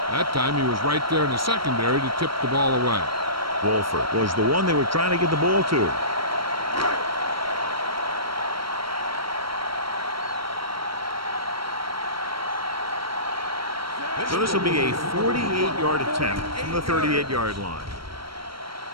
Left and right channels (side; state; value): left; late; 0.74 ms